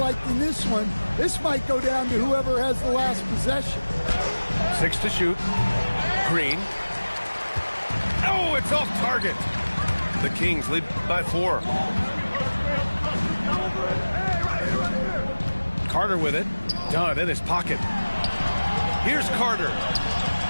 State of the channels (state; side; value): inverted; both; correlation -1.00